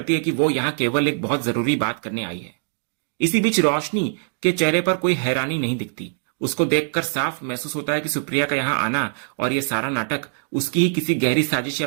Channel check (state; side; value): silent; left; digital silence